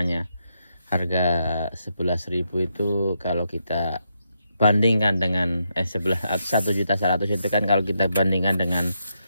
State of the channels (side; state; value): both; inverted; correlation -0.81